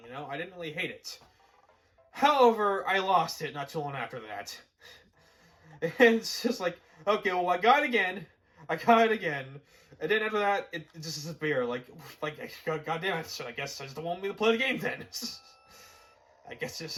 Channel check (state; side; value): identical; both; correlation 1.00